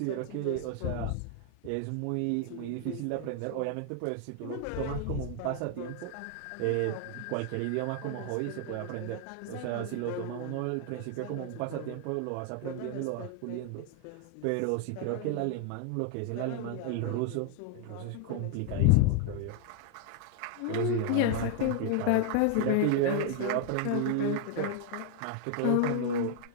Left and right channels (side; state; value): both; different; correlation 0.00